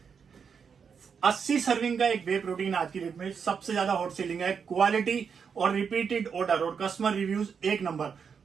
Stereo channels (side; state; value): left; quieter; 6.4 dB